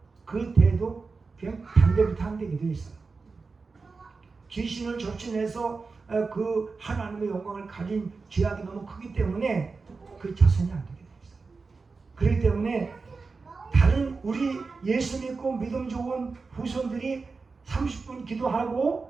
그 대도 그냥 단대부터 안 되게 되어 있어요. 귀신을 접신해서 그 하나님의 영광을 가진 죄악이 너무 크기 때문에 그 자손이 안 되게 되어 있어요. 그렇기 때문에 다른 우리 예수 믿고 믿음 좋은 후손들이 30분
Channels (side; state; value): left; quieter; 4.3 dB